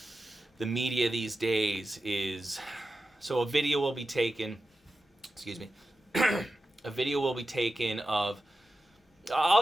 the media these days is, so a video will be taken. Excuse me. A video will be taken of.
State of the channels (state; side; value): normal; both; correlation 0.92